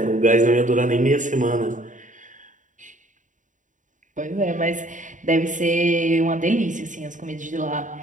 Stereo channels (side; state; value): left; late; 0.37 ms